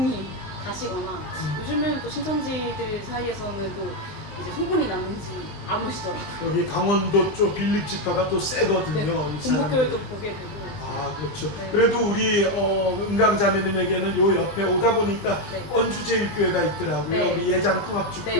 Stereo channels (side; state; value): right; late; 20 ms